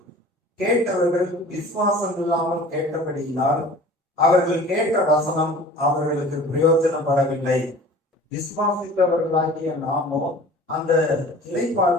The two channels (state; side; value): normal; both; correlation 0.44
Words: கேட்டவர்கள் விசுவாசம் இல்லாமல் கேட்டபடியினால் அவர்கள் கேட்ட வசனம் அவர்களுக்கு பிரயோஜனப்படவில்லை. விசுவாசித்தவர்களாகிய நாமோ அந்த